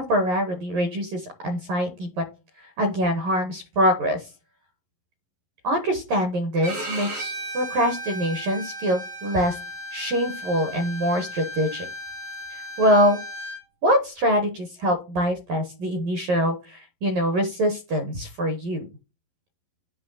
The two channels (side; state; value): left; late; 11 ms